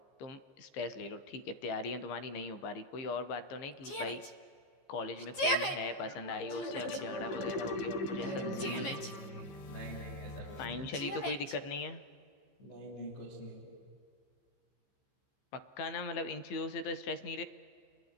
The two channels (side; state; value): right; late; 15 ms